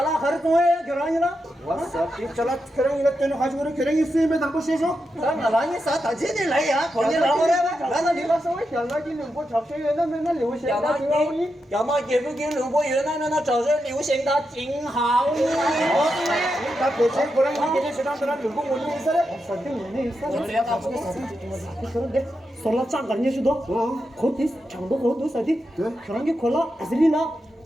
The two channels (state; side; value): normal; both; correlation 0.87